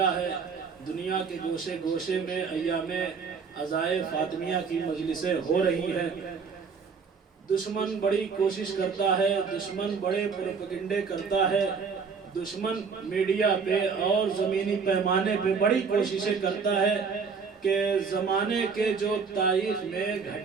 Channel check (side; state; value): left; quieter; 5.5 dB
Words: ہے. دنیا کے گوشے گوشے میں ایام عزائے فاطمیہ کی مجلسیں ہو رہی ہیں. دشمن بڑی کوشش کرتا ہے, دشمن بڑے پروپیگنڈے کرتا ہے, دشمن میڈیا پہ اور زمینی پیمانے پہ بڑی کوششیں کرتا ہے کہ زمانے کے جو تاریخ میں